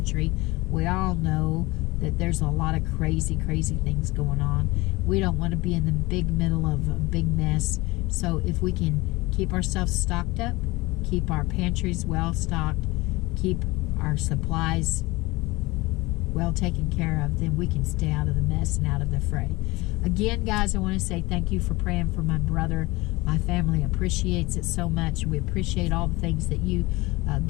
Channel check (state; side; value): quieter; right; 21.9 dB